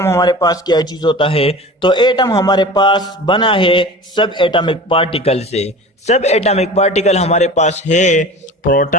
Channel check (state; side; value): normal; both; correlation 0.37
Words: हमारे पास क्या चीज होता है। तो एटम हमारे पास बना है सब एटॉमिक पार्टिकल से। सब एटॉमिक पार्टिकल हमारे पास है